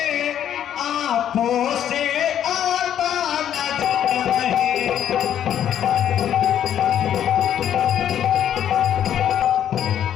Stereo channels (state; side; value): quieter; right; 10.2 dB